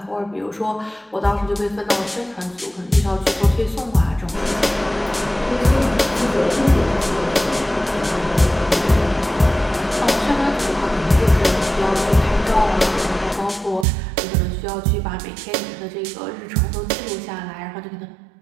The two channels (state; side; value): drops out; left; at 13.9 s